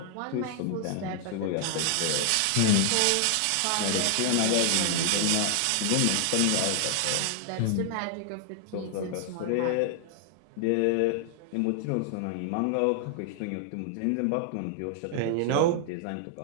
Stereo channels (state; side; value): different; both; correlation 0.00